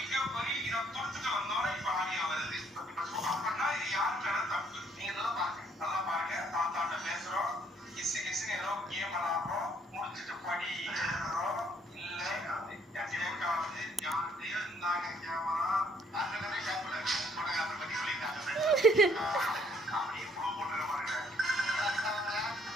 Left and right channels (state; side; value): normal; both; correlation 0.64